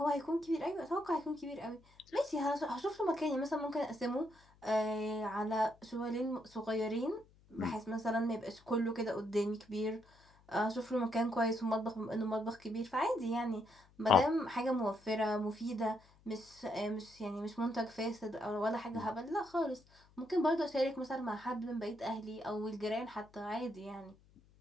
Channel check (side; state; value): left; noise; hum, 28 dB below the sound